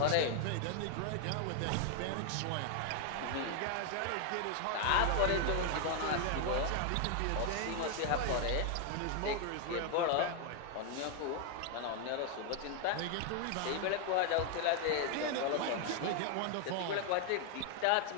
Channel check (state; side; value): different; both; correlation 0.00